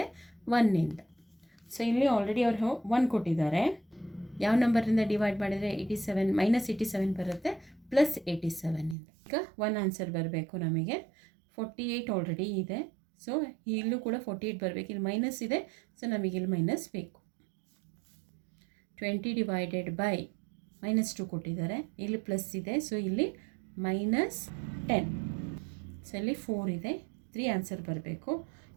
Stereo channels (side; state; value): left; drops out; at 9.0 s